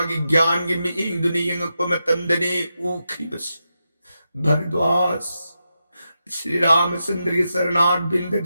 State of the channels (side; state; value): both; inverted; correlation -0.88